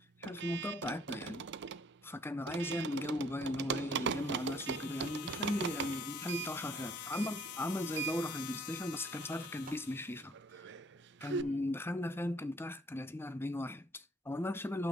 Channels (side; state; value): both; normal; correlation 0.61